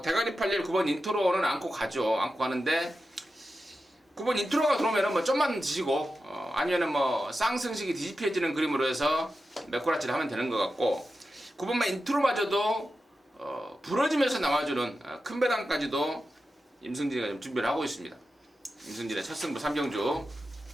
대가리 팔릴 9번 인트로는 안고 가죠. 안고 가는데 9번 인트로가 들어오면은 뭐 좀만 지지고 아니면은 뭐 쌍승식이 뒤집혀지는 그림으로 해서 메꾸라치를 하면 되는 것 같고, 9번만 인트로마저도 부러지면서 나와주는 큰 배당까지도 임승진이가 좀 준비를 하고 있습니다. 임승진의 첫 승부 3경주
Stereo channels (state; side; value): normal; both; correlation 0.91